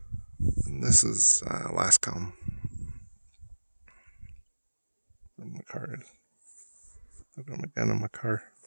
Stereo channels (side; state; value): both; inverted; correlation -1.00